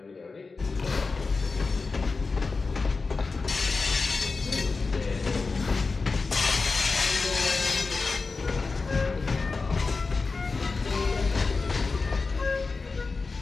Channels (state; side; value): quieter; right; 4.1 dB